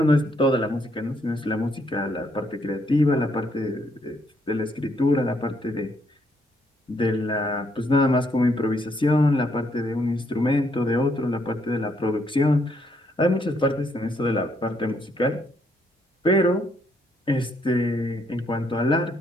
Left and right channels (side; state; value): both; normal; correlation 0.72